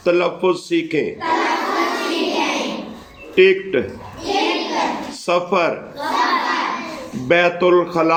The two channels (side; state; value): both; identical; correlation 1.00